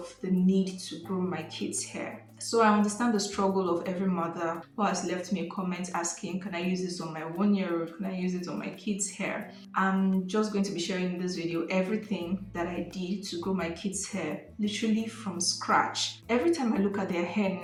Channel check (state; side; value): identical; both; correlation 1.00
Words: the need to grow my kids' hair. So I understand the struggle of every mother who has left me a comment asking, can I use this on my 1 year old? Can I use it on my kids' hair? I'm just going to be sharing in this video everything that I did to grow my kids' hair, literally from scratch. Every time I look at their hair